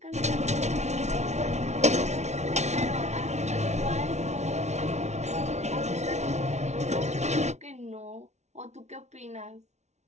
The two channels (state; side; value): late; left; 0.32 ms